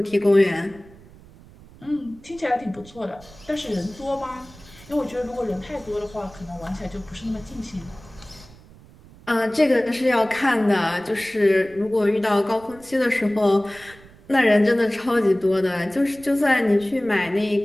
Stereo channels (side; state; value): right; noise; rumble, 23 dB below the sound